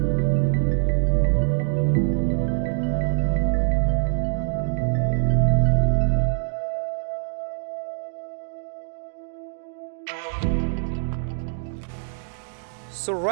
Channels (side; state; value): left; silent; digital silence